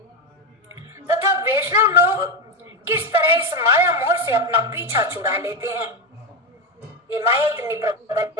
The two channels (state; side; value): normal; both; correlation 0.12